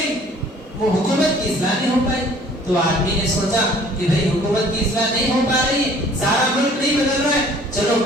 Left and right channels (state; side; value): normal; both; correlation 0.54